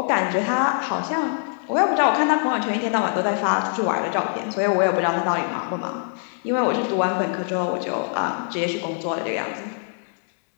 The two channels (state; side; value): silent; right; digital silence